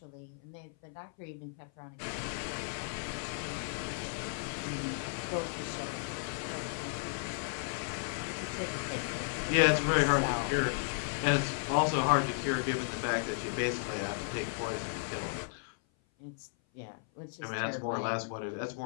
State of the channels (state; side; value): silent; right; 55 dB below the other